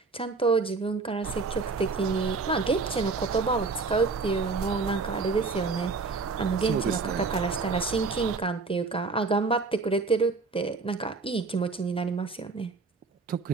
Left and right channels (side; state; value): left; quieter; 4.2 dB